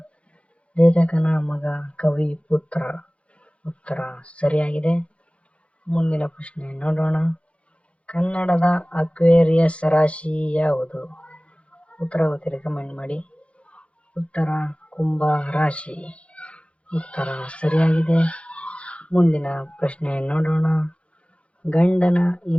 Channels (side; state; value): right; late; 0.061 ms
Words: ಲೇಖಕನ ಮಗ ಕವಿ ಪುತ್ರ. ಉತ್ತರ ಸರಿಯಾಗಿದೆ. ಮುಂದಿನ ಪ್ರಶ್ನೆ ನೋಡೋಣ. ಕನ್ನಡದ ಅಕ್ವೇರಿಯಸ್ ರಾಶಿ ಯಾವುದು? ಉತ್ತರ ಗೊತ್ತಿದೆ ಕಮೆಂಟ್ ಮಾಡಿ. ಉತ್ತರ ಕುಂಭ ರಾಶಿ. ಉತ್ತರ ಸರಿಯಾಗಿದೆ. ಮುಂದಿನ ಪ್ರಶ್ನೆ ನೋಡೋಣ. ಗಂಡನ